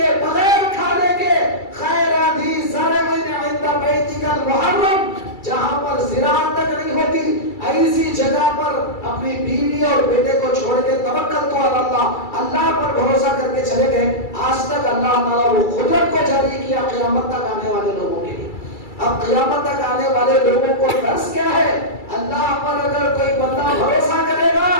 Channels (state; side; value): late; right; 2.3 ms